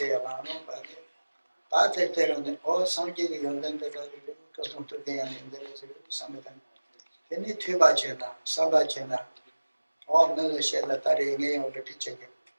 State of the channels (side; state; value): both; inverted; correlation -1.00